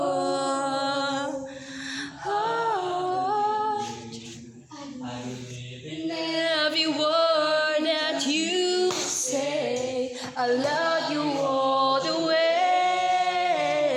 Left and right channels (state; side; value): identical; both; correlation 1.00